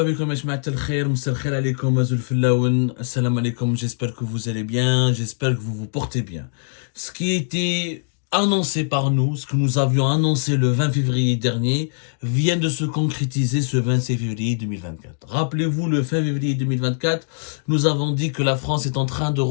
بكم يا جماعة الخير مساء الخير عليكم زول الفلاون السلام عليكم j'espère que vous allez bien j'espère que vous vous portez bien ce qui était annoncé par nous ce que nous avions annoncé le 20 février dernier vient de se concrétiser ce 26 février 2024 rappelez-vous le 20 février 2024 nous avons dit que la France est en train de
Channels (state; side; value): silent; right; digital silence